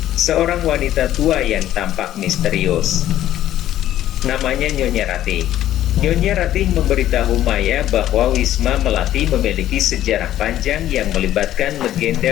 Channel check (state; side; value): quieter; right; 12.7 dB